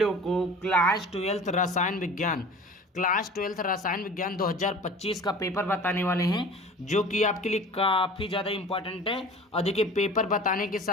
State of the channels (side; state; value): both; normal; correlation 0.41